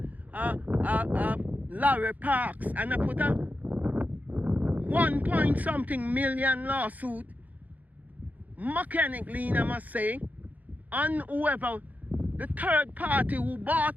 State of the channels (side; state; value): left; late; 0.079 ms